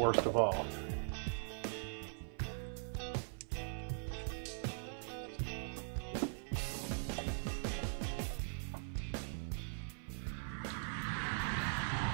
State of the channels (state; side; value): silent; left; 50 dB below the other